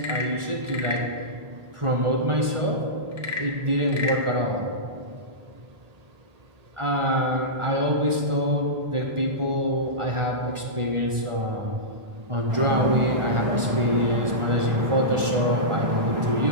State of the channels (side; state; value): left; late; 1.4 ms